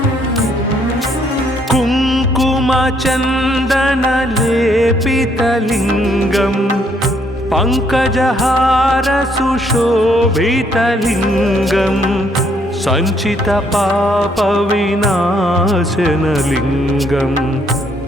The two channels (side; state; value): both; normal; correlation 0.69